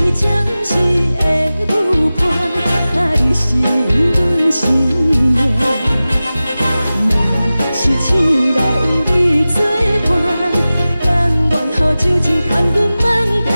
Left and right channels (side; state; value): both; inverted; correlation -0.96